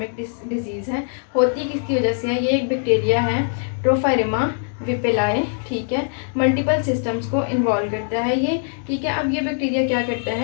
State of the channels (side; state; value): right; silent; digital silence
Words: डिजीज़ है। होती किसकी वजह से है? ये एक बैक्टीरिया है, ट्रोफायरिमा विपेलाए, ठीक है। मल्टीपल सिस्टम्स को इन्वॉल्व करता है ये, ठीक है। अब ये बैक्टीरिया क्या करता